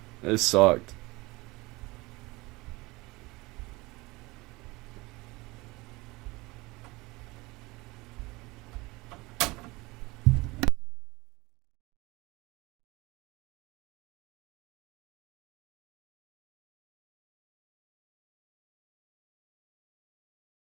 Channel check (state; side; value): quieter; left; 22.6 dB